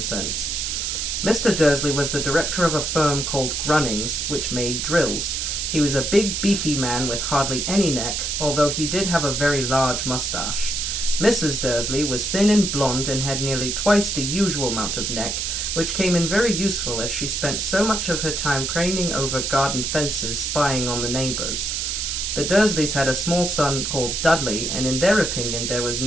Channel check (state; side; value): noise; right; hiss, 1 dB below the sound